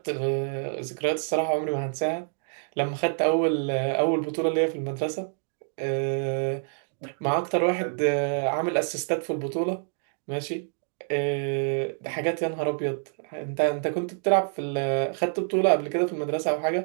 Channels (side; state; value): left; silent; 58 dB below the other